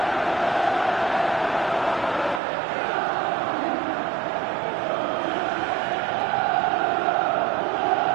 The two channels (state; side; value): drops out; left; at 2.4 s